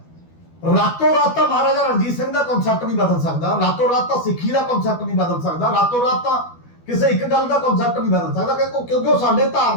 ਰਾਤੋਂ ਰਾਤ ਤਾਂ ਮਹਾਰਾਜਾ ਰਣਜੀਤ ਸਿੰਘ ਦਾ ਕਨਸੈਪਟ ਨਹੀਂ ਬਦਲ ਸਕਦਾ, ਰਾਤੋਂ ਰਾਤ ਤਾਂ ਸਿੱਖੀ ਦਾ ਕਨਸੈਪਟ ਨਹੀਂ ਬਦਲ ਸਕਦਾ, ਰਾਤੋਂ ਰਾਤ ਤਾਂ ਕਿਸੇ ਇੱਕ ਗੱਲ ਦਾ ਕਨਸੈਪਟ ਨਹੀਂ ਬਦਲ ਸਕਦਾ, ਕਿਉਂਕਿ ਉਹ ਸਾਡੇ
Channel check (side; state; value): right; late; 12 ms